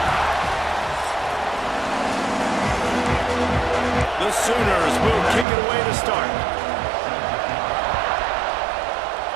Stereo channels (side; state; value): left; drops out; at 5.5 s